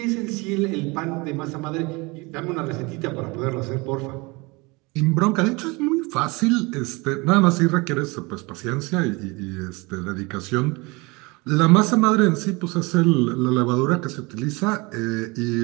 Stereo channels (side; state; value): left; quieter; 25.7 dB